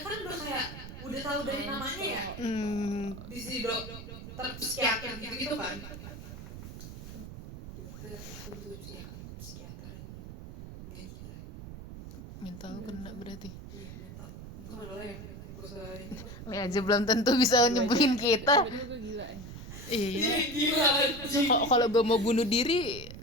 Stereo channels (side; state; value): right; noise; rumble, 11 dB below the sound